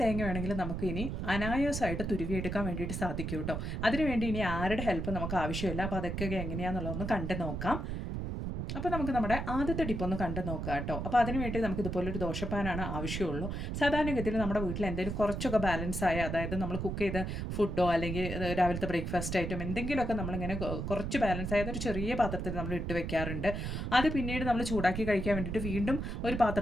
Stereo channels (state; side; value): noise; right; rumble, 3 dB below the sound